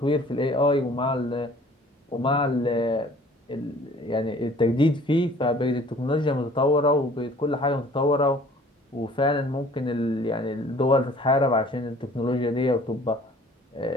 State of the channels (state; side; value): normal; both; correlation 0.52